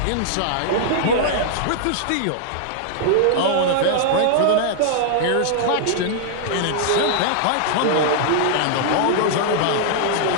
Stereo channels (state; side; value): different; both; correlation -0.01